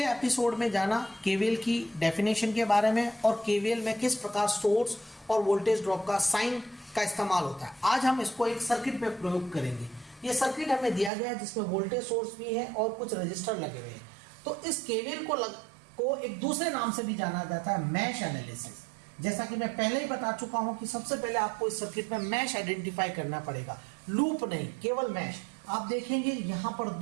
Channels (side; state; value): left; drops out; at 11.1 s